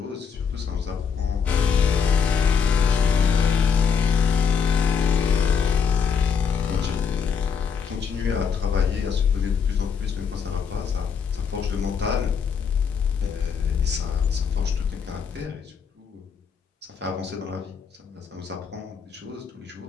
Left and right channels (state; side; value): quieter; right; 6.5 dB